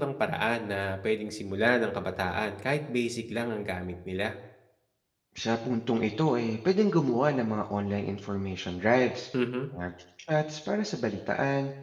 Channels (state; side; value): identical; both; correlation 1.00